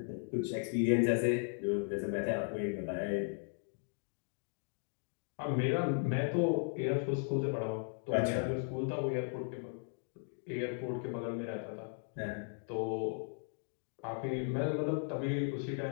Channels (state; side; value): silent; right; 53 dB below the other